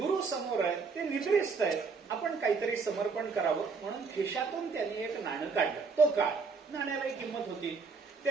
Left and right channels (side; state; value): left; quieter; 4.8 dB